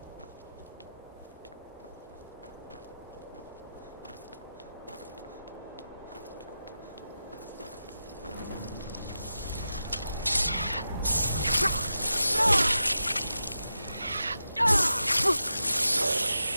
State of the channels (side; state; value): both; inverted; correlation -0.90